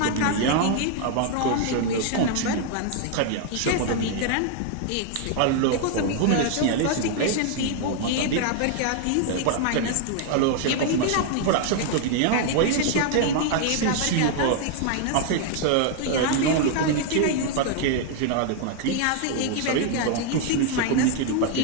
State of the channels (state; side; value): different; both; correlation 0.00